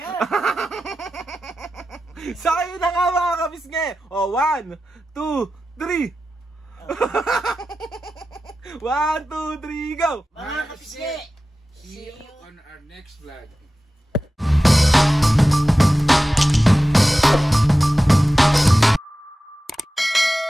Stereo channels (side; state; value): both; normal; correlation 0.94